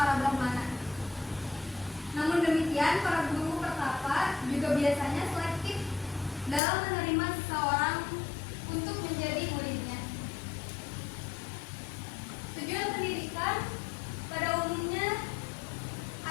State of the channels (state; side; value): drops out; right; at 6.6 s